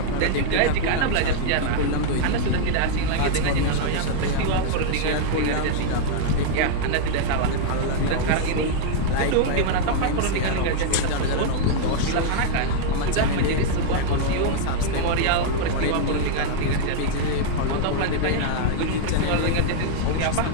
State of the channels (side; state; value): both; different; correlation -0.01